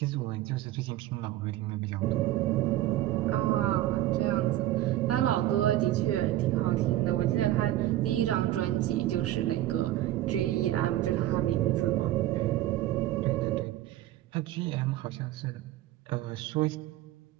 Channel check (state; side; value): quieter; left; 14.5 dB